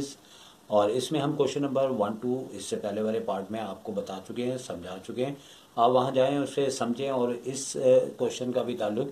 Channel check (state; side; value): identical; both; correlation 1.00